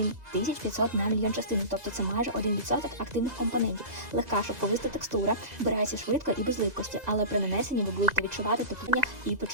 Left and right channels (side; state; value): left; late; 2.0 ms